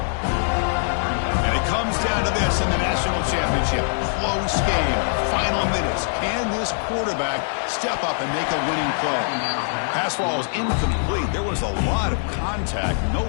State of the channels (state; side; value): silent; right; digital silence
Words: And it comes down to this in the national championship. Close game. Final minutes. Can this quarterback step up and make a winning play? Pass ball is incomplete. There was a lot of contact. No